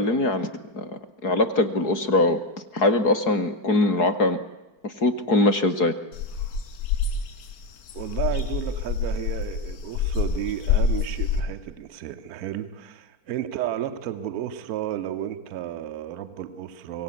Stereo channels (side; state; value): right; late; 4.4 ms